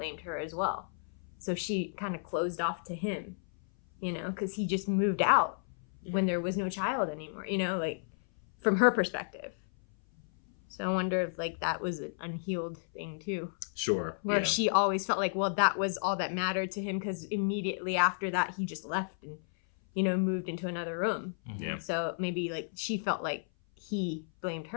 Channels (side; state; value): right; silent; 56 dB below the other